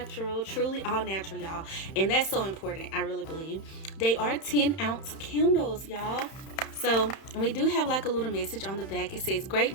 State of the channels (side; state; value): right; late; 31 ms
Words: truly all natural, y'all, and that's so important. I really believe they are 10-ounce candles, y'all. So, and we do have like a little message on the back. It says, great